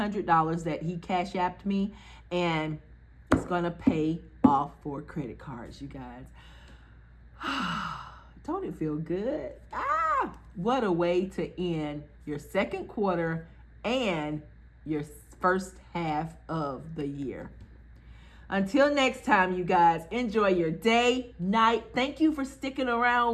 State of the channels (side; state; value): both; identical; correlation 1.00